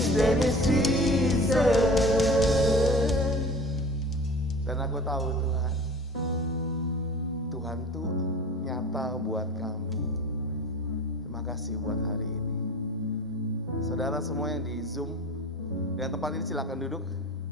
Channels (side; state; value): both; normal; correlation 0.41